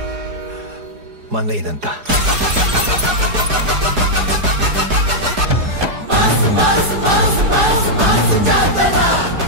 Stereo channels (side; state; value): left; late; 4.8 ms